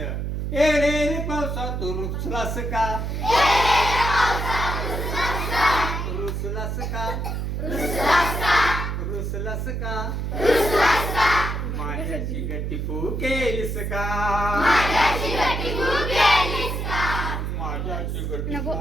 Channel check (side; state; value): right; noise; hum, 2 dB below the sound